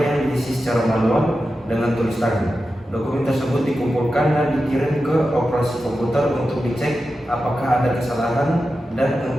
diisi secara manual dengan tulis tangan. Dokumen tersebut dikumpulkan dan dikirim ke operasi komputer untuk dicek apakah ada kesalahan dan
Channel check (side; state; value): both; normal; correlation 0.91